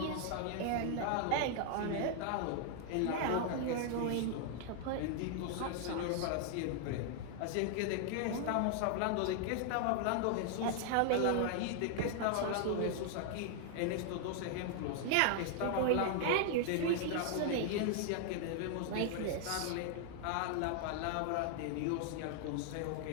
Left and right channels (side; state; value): both; different; correlation 0.00